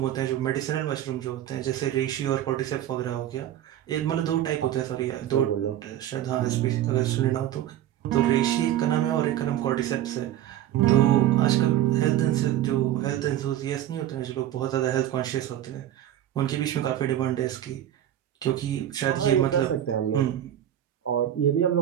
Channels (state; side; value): quieter; left; 11.9 dB